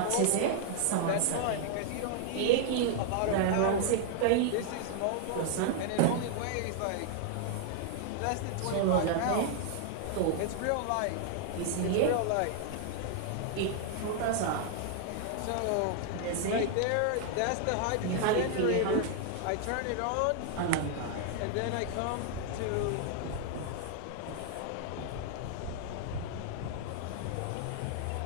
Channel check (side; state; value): both; different; correlation 0.00